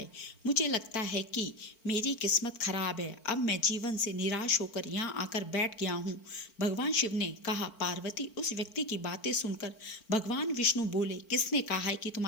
मुझे लगता है कि मेरी किस्मत खराब है। अब मैं जीवन से निराश होकर यहाँ आकर बैठ गया हूँ। भगवान शिव ने कहा, पार्वती, उस व्यक्ति की बातें सुनकर भगवान विष्णु बोले, किसने कहा है कि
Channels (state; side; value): late; right; 4.5 ms